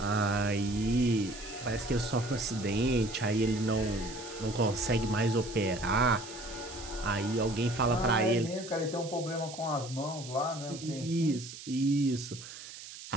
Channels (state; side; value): noise; right; hiss, 13 dB below the sound